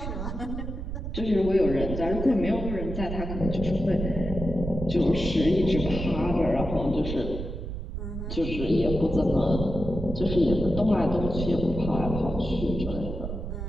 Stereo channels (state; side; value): noise; right; rumble, 6 dB below the sound